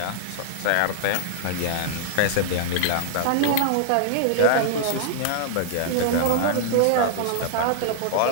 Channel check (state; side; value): different; both; correlation 0.00